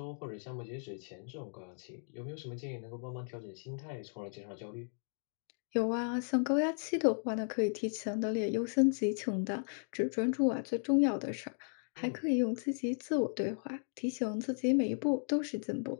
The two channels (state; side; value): silent; right; digital silence